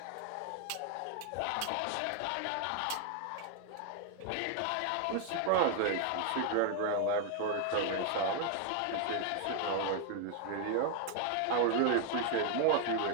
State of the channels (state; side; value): different; both; correlation 0.00